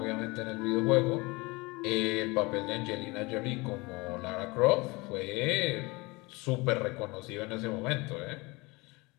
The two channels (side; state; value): right; quieter; 24.8 dB